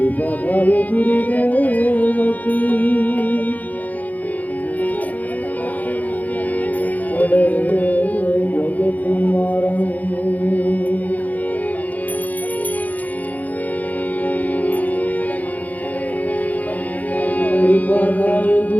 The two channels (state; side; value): late; right; 0.078 ms